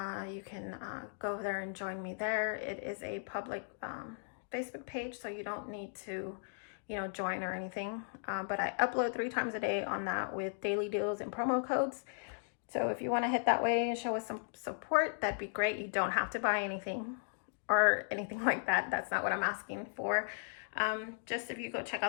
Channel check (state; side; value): silent; right; digital silence